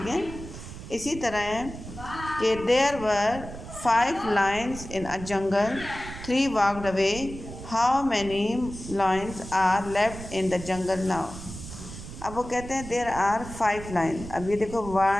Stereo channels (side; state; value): right; noise; rumble, 12 dB below the sound